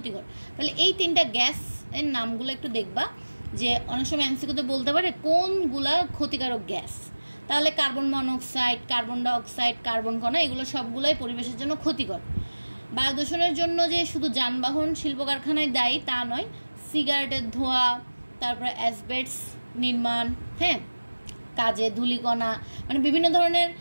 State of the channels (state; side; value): inverted; both; correlation -1.00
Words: তাহলে এই তিনটা গ্যাস এর নামগুলো একটু দেখবা, যে অনেক সময় এমসিকিউতে বলতে পারে কোনগুলা ক্ষতিকারক গ্যাস। তাহলে carbon monoxide, carbon dioxide, carbon কণা, এগুলো সবগুলোই পরিবেশের জন্য ক্ষতিকর। বায়ু দূষণের জন্য যে শুধু যানবাহন, শিল্প কারখানায় দায়ী তা নয়, সিগারেটের ধোঁয়া, তারপরে অ্যাসবেস্টস নির্মাণ, হ্যাঁ, কাজে ধূলিকণা, মানে বিভিন্ন ধরনের